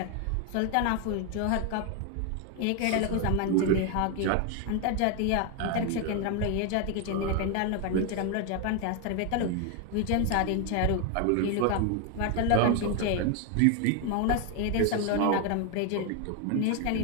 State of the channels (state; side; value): different; both; correlation 0.01